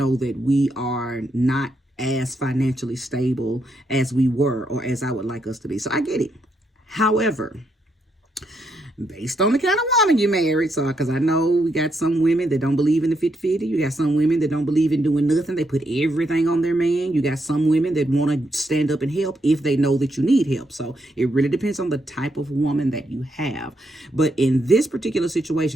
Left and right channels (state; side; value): normal; both; correlation 0.79